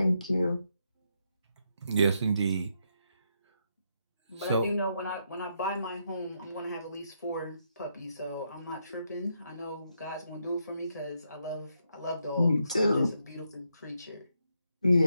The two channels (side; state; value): both; inverted; correlation -0.80